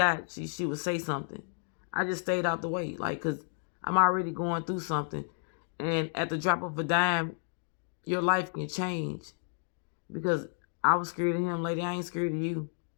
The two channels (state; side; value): silent; right; digital silence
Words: she would say something. I just stayed out the way, like, because I'm already going through something. And at the drop of a dime, your life can change. Because I was scared of him, lady. I ain't scared of you.